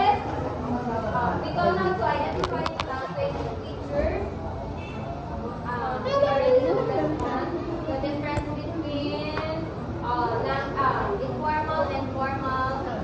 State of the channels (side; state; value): both; identical; correlation 1.00